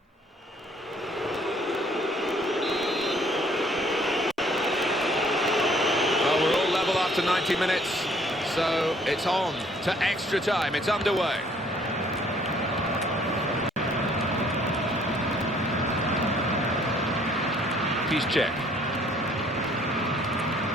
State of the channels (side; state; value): both; normal; correlation 0.61